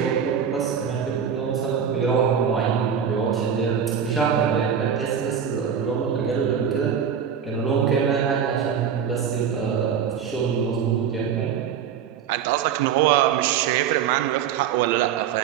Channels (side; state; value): left; quieter; 7.9 dB